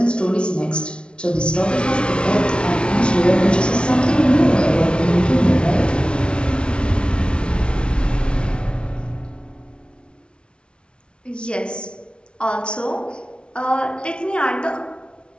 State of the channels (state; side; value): late; right; 0.057 ms